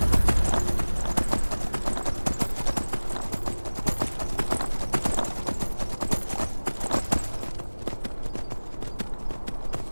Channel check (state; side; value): inverted; both; correlation -1.00